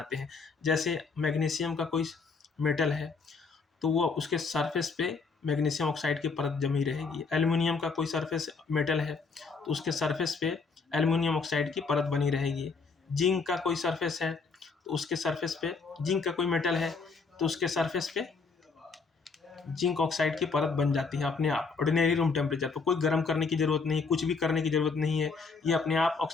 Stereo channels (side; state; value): right; quieter; 4.7 dB